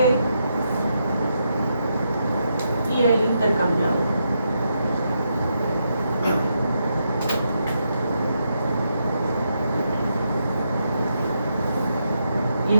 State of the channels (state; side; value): inverted; both; correlation -0.81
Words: y el intercambiador. Y